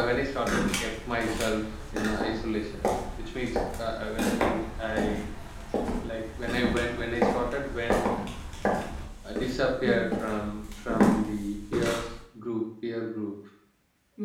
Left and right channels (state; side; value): identical; both; correlation 1.00